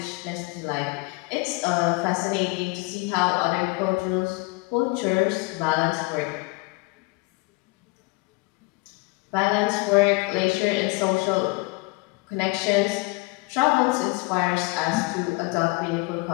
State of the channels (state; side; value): quieter; right; 25.8 dB